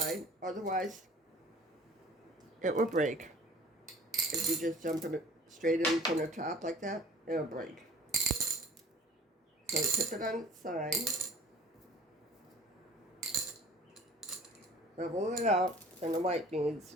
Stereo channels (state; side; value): normal; both; correlation 0.47